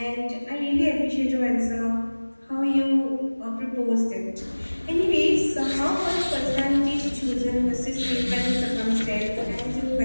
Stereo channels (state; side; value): inverted; both; correlation -1.00